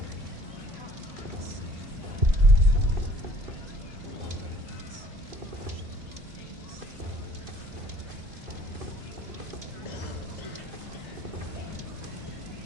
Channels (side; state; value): left; late; 2.5 ms